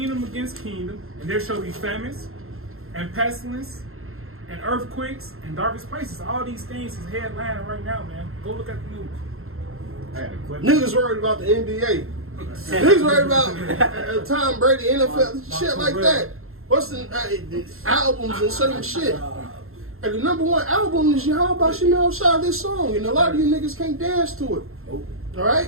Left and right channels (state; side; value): late; left; 0.62 ms